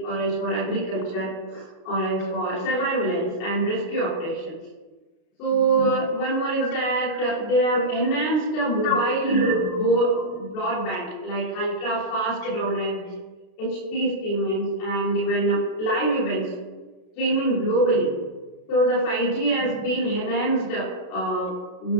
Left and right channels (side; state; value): right; late; 32 ms